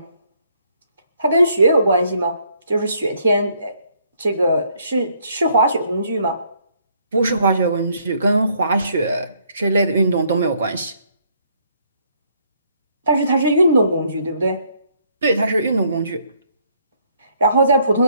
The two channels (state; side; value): inverted; both; correlation -0.68